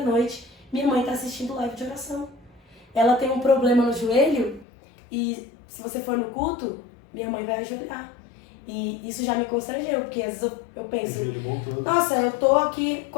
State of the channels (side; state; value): right; drops out; at 4.7 s